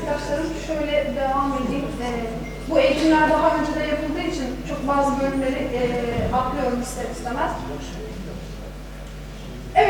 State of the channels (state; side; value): identical; both; correlation 1.00